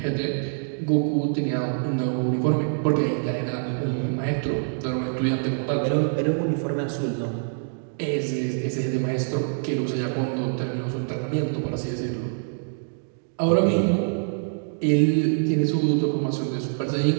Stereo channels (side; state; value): left; silent; digital silence